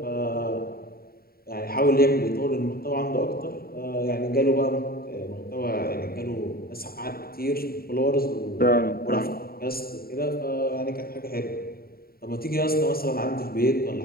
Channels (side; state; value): right; late; 0.44 ms